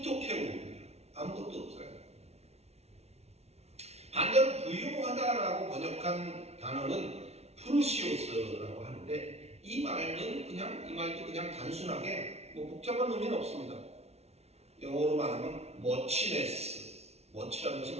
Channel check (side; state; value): left; late; 0.31 ms